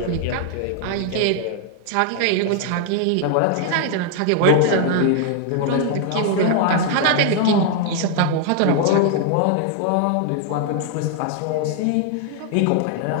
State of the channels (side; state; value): both; different; correlation 0.00